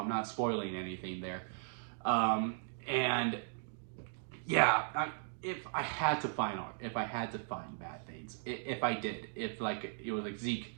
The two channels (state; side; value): silent; left; digital silence